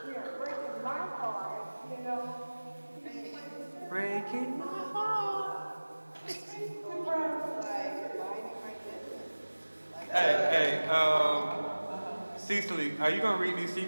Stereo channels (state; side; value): inverted; both; correlation -1.00